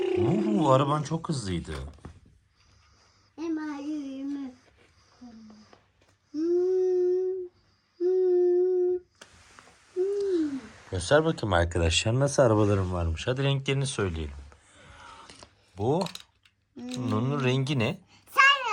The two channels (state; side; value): identical; both; correlation 1.00